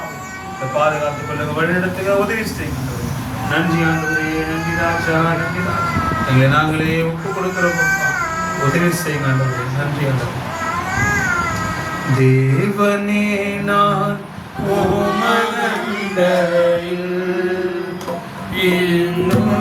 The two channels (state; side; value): identical; both; correlation 1.00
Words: இந்த பாதுகாத்துக் கொள்ளுங்க, வழிநடத்துங்க, உதவி செய்யுங்க. நன்றி ஆண்டவரே, நன்றி ராஜா, நன்றி ராஜா. எங்களை நாங்களே ஒப்பு கொடுக்கிறோம் அப்பா. உதவி செய்யுங்க ஆண்டவரே. நன்றி ஆண்டவரே. தேவனே நான்